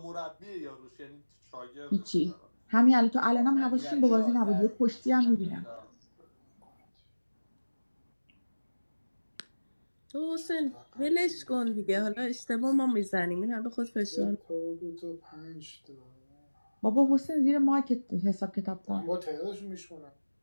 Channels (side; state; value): both; inverted; correlation -1.00